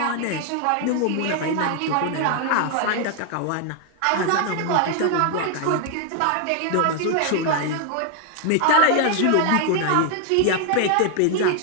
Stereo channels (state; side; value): different; both; correlation 0.00